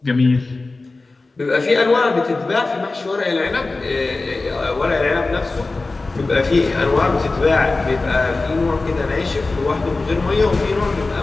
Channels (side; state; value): right; quieter; 3.5 dB